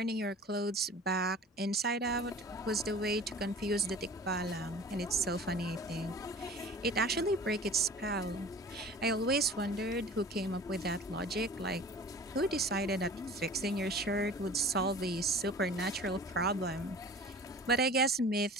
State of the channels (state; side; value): normal; both; correlation 0.42